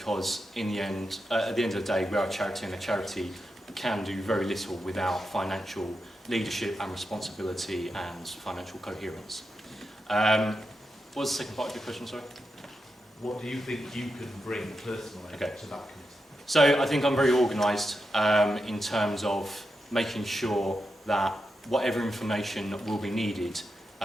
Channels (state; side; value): normal; both; correlation 0.88